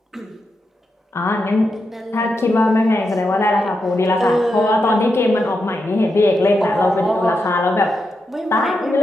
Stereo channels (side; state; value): both; normal; correlation 0.86